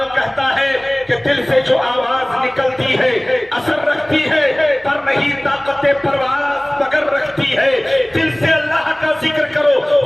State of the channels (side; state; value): right; noise; hum, 30 dB below the sound